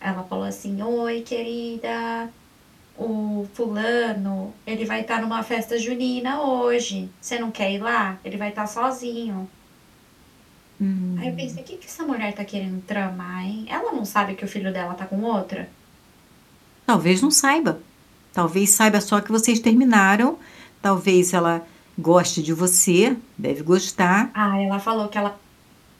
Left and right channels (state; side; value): identical; both; correlation 1.00